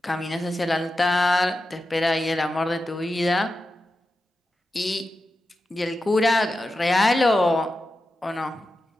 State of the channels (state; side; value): normal; both; correlation 0.91